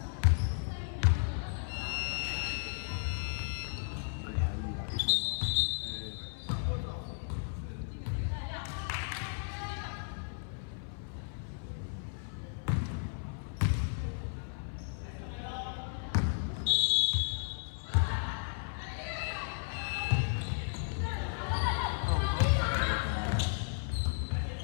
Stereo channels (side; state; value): right; silent; 55 dB below the other